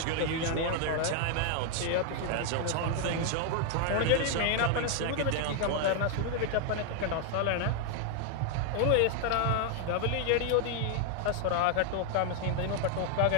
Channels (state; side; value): different; both; correlation 0.00